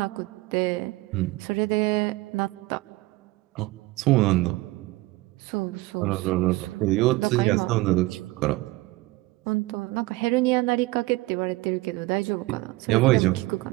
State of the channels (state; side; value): quieter; left; 20.1 dB